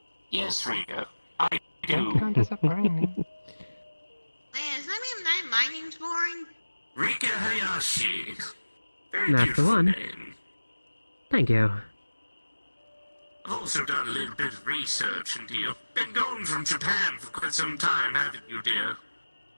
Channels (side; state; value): both; inverted; correlation -1.00